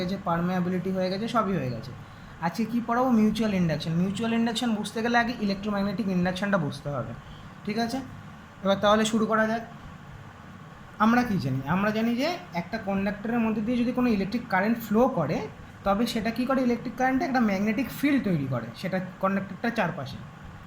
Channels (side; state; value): both; identical; correlation 1.00